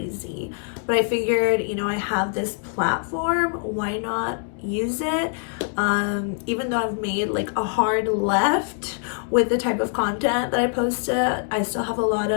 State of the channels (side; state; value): right; silent; 56 dB below the other